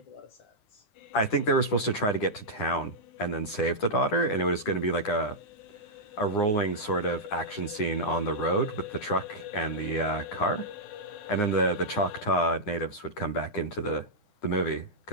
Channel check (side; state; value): right; late; 9.8 ms